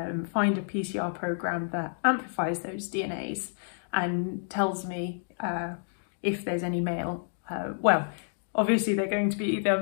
find a PCR program that amplifies those DNAs and tells me if there's any male. Well, obviously they're going to be either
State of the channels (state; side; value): silent; right; digital silence